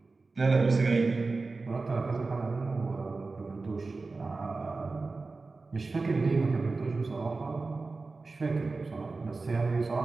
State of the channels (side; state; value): left; quieter; 3.8 dB